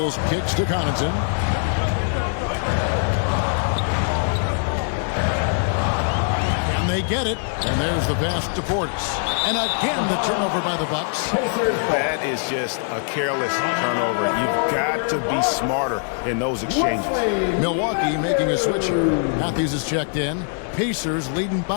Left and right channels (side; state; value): right; silent; 61 dB below the other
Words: kicks to Connaughton. And they get it. And there's the pass to Portis. And again, the turnover by the Bucks. That is just a careless turnover. You've got to be smarter in those exchanges. Milwaukee making a switch here. Matthews is checked in. Pacers leading